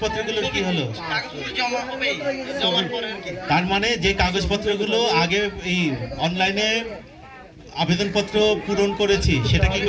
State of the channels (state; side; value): identical; both; correlation 1.00